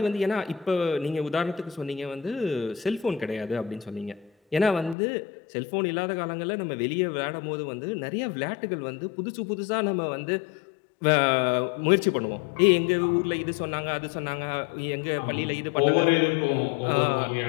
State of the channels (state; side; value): drops out; right; at 5.0 s